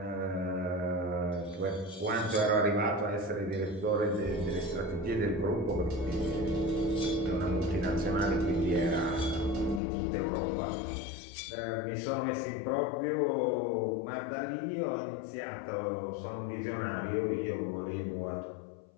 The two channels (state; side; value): drops out; right; at 9.8 s